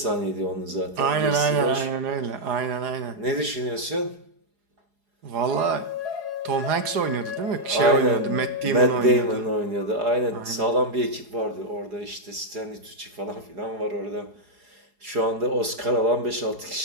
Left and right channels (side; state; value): left; late; 4.8 ms